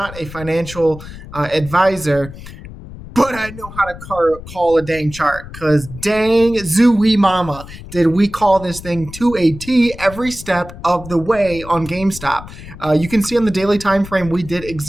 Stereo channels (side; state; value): left; noise; rumble, 14 dB below the sound